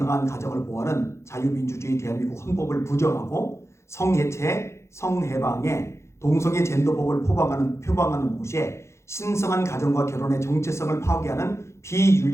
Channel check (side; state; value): right; late; 0.13 ms